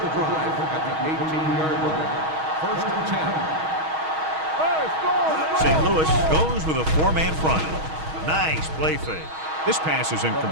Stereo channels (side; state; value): left; late; 6.3 ms